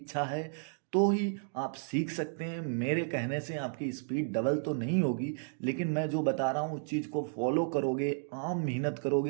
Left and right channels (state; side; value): silent; left; digital silence